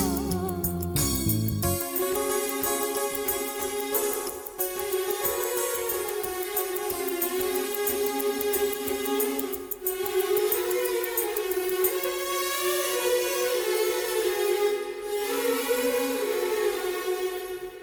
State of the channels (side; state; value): both; identical; correlation 1.00